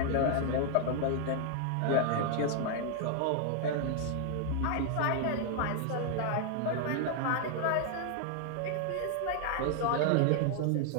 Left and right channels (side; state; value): both; different; correlation 0.00